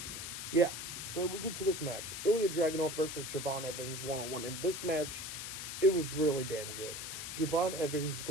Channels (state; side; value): noise; left; hiss, 6 dB below the sound